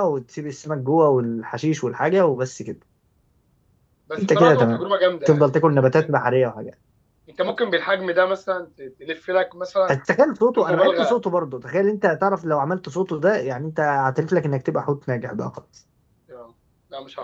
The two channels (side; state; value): both; identical; correlation 1.00